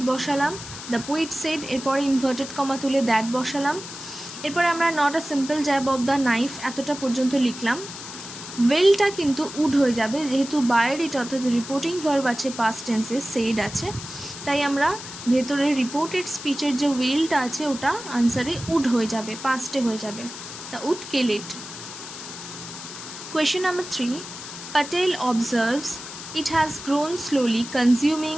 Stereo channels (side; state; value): left; noise; hiss, 11 dB below the sound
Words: বসালাম, দ্য পোয়েট সেড, এরপরে ইনভার্টেড কমা তুলে দ্যাট বসালাম, এরপরে আমরা not a simple jab of the knife এতটা পর্যন্ত লিখলাম। উইলটা কিন্তু উড হয়ে যাবে, যেহেতু বায়ের এটা অর্থাৎ রিপোর্টিং ভার্ব আছে পাস্ট টেন্সে, সেড আছে, তাই আমরা ভেতরে রিপোর্টেড স্পিচের যে উইলটা আছে ওটা আনসারে উড হয়ে যাবে, পাস্টে হয়ে যাবে, তা would kill it. Question number 3, Patel observes it has grown slowly consuming